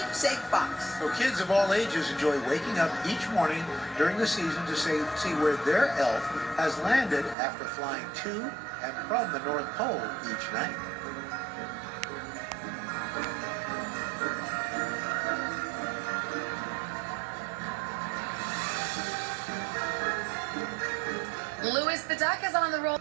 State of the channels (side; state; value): left; drops out; at 7.4 s